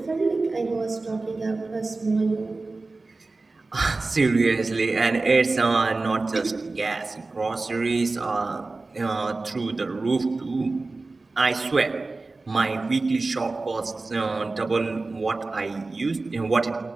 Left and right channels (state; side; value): quieter; left; 3.5 dB